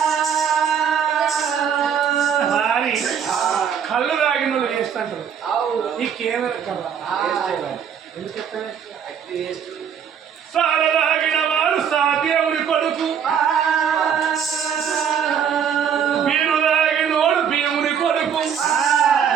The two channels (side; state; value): left; quieter; 7.9 dB